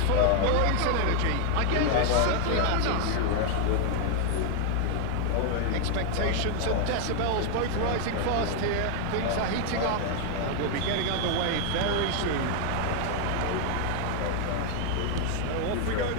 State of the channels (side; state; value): both; different; correlation 0.00